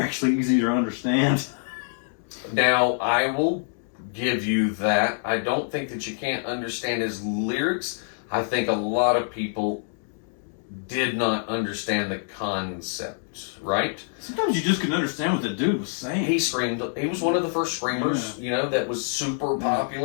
easy to understand. Now, I will give you that. I don't think that you can't understand his lyrics. I think a lot of people did not understand the concept, right? Sometimes you just couldn't understand what the dude was saying. He screamed. He was one of the first screamers, that was super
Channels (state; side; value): silent; right; 61 dB below the other